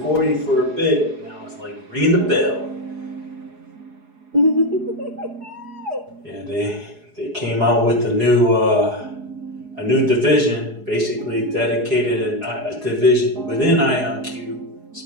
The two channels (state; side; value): late; left; 4.8 ms